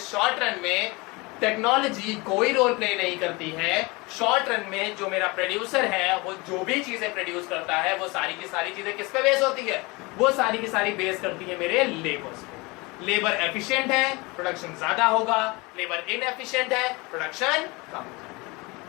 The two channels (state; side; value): quieter; right; 25.2 dB